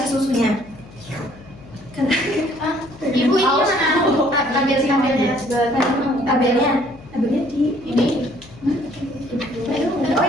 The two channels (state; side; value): noise; left; hum, 21 dB below the sound